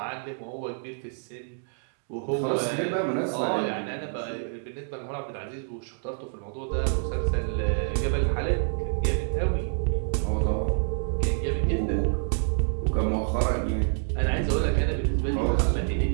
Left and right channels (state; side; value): silent; left; digital silence